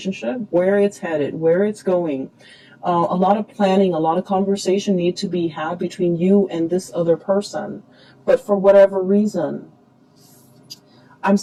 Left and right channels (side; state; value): both; identical; correlation 1.00